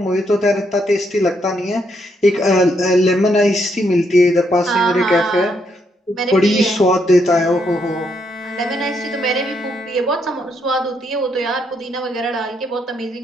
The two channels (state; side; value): normal; both; correlation 0.76